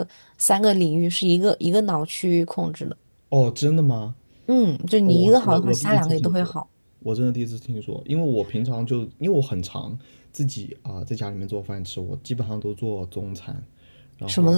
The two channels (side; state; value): both; inverted; correlation -1.00